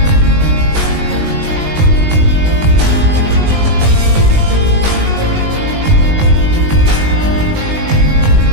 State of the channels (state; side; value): late; left; 19 ms